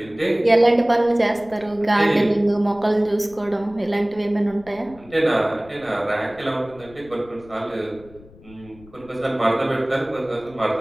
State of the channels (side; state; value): left; noise; rumble, 23 dB below the sound